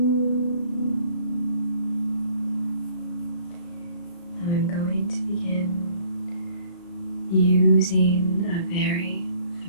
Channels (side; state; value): right; late; 35 ms